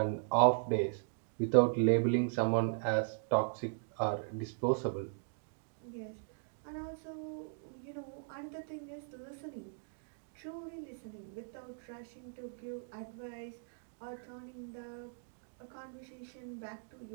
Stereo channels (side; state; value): left; silent; digital silence